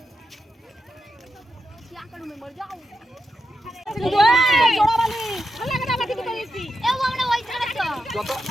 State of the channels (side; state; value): both; normal; correlation 0.87